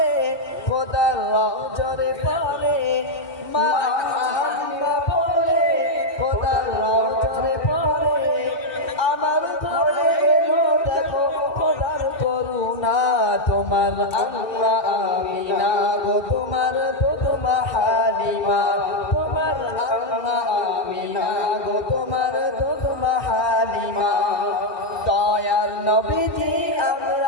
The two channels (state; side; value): late; right; 2.6 ms